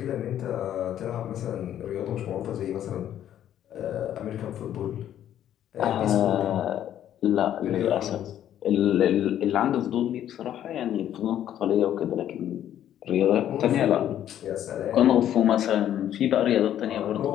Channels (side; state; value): right; quieter; 11.0 dB